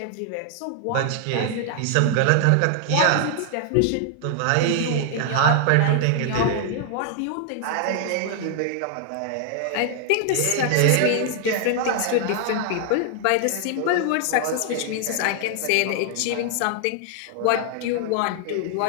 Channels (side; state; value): both; different; correlation 0.00